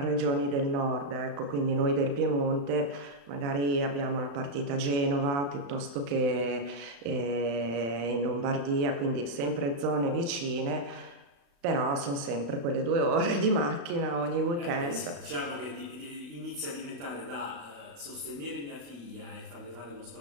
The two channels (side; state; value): left; late; 35 ms